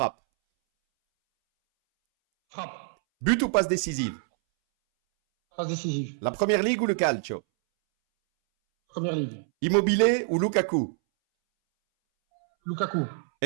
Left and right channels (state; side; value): silent; left; 61 dB below the other